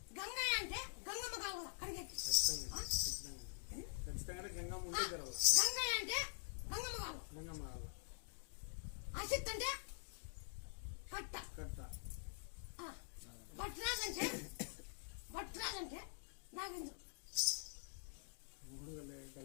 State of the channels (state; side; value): silent; right; digital silence